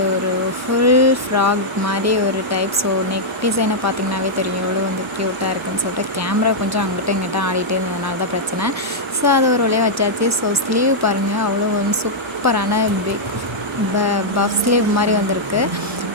ஒரு ஃபுல் ஃப்ராக் மாரி ஒரு டைப். ஸோ நெக் டிசைனை பார்த்தீங்கன்னாவே தெரியும் எவ்வளோ க்யூட்டாக இருக்குன்னு சொல்லிட்டு. கேமரா கொஞ்சம் அங்கிட்டும் இங்கிட்டும் ஆடிட்டே இருந்ததுனால தான் பிரச்சனை. ஸோ அது ஒரு வழியா வச்சாச்சு. ஸோ ஸ்லீவ் பாருங்கள், அவ்வளோ சூப்பரான பிக் பஃப் ஸ்லீவ் மாரி வந்திருக்கு.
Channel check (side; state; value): both; normal; correlation -0.07